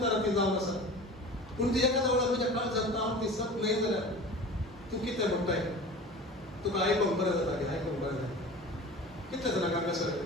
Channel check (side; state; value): both; normal; correlation 0.37